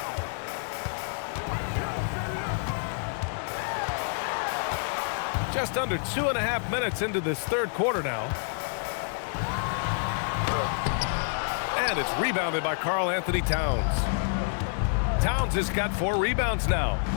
Just under 2.5 minutes into this third quarter now. And it's rebounded by Karl-Anthony Towns. Towns has got 4 rebounds now.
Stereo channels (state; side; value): silent; right; digital silence